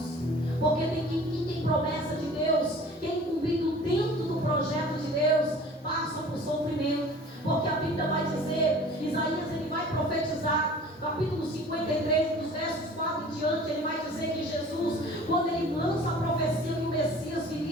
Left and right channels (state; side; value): normal; both; correlation 0.46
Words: Porque quem tem promessa de Deus, quem é incumbido dentro do projeto de Deus, passa por sofrimento. Porque a Bíblia vai dizer, Isaías, ele vai profetizar, capítulo 53, dos versos 4 em diante, ele vai dizer que Jesus, quando ele lança a profecia que o Messias